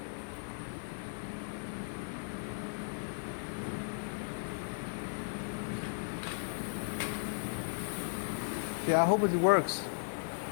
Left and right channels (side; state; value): right; silent; digital silence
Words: Yeah, I hope it works.